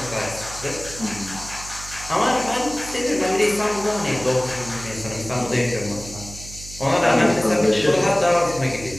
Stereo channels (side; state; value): right; noise; hum, 14 dB below the sound